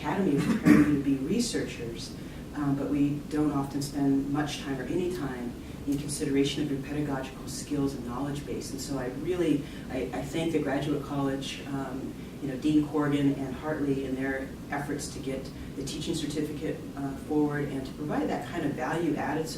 of preparing you to be researchers, but we don't often spend much time or any time in consideration of your pedagogical skills and knowledge base. And so I thank the Graduate College, Dean Corrigan and Hartley in their efforts to get the teaching certificate forward and to provide that kind of value-added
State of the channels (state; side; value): identical; both; correlation 1.00